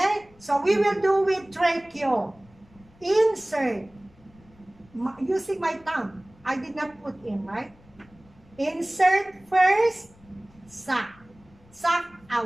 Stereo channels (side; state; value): left; noise; rumble, 28 dB below the sound